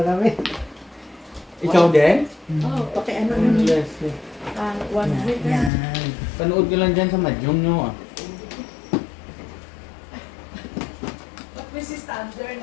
kami. Ikaw din? Oh, pakiano nun. Yes. yes. 100 na. Yan. Panood ka lang dyan sa Madyong nyo. But this is standard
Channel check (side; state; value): right; drops out; at 5.7 s